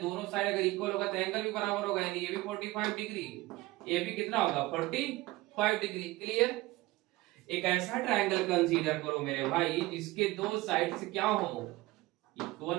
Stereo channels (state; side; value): quieter; left; 19.4 dB